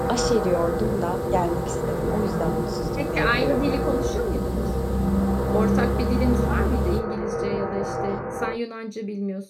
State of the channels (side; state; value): both; identical; correlation 1.00